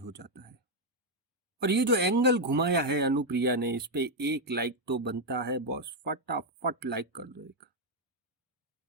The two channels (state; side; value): normal; both; correlation 0.01